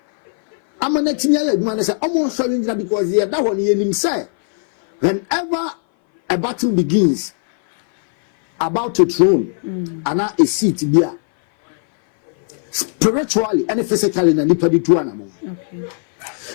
amanetimi aye adwuma ne say omo hware ngira because ye da ho ne yenim say whenever a battle begins about a throne and a seat there spiritually and physically na nipa di tu anamon. Okay.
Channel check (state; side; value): silent; right; 60 dB below the other